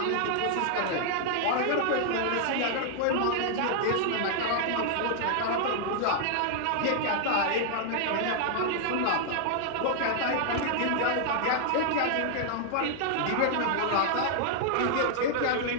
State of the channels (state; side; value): different; both; correlation -0.01